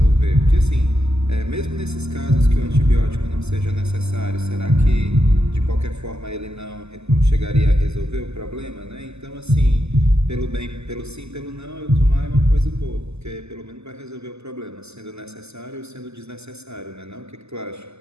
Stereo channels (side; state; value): left; late; 0.80 ms